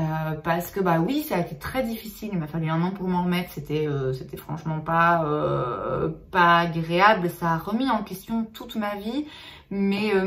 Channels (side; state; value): both; identical; correlation 1.00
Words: Parce que bah oui, ça a été très difficile, il m'a fallu un an pour m'en remettre, c'était franchement pas agréable, ça a remis en question toute ma vie, mais